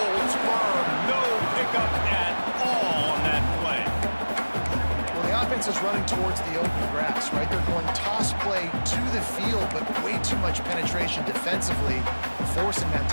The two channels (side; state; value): both; inverted; correlation -1.00